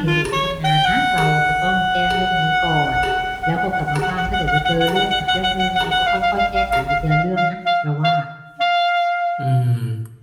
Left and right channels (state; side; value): identical; both; correlation 1.00